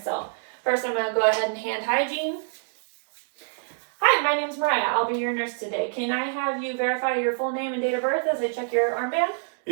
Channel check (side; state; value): left; silent; 61 dB below the other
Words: First, I'm going to go ahead and hand hygiene. Hi, my name is Mariah. I'll be your nurse today. Can I have you verify your full name and date of birth as I check your armband?